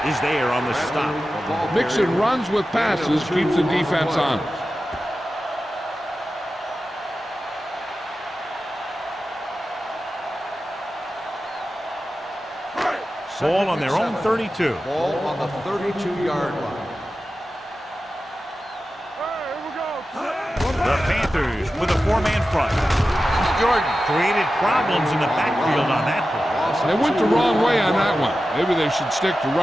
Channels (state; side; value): normal; both; correlation 0.93